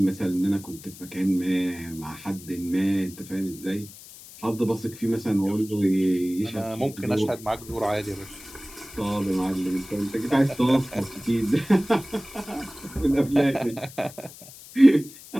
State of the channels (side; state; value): left; noise; hiss, 18 dB below the sound